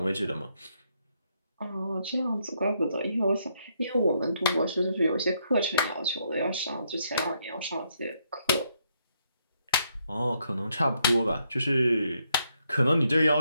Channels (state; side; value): inverted; both; correlation -0.75